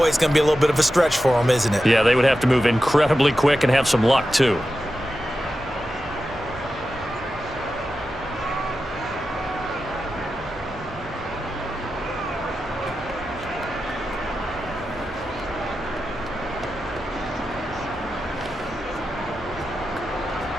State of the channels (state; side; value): normal; both; correlation 0.91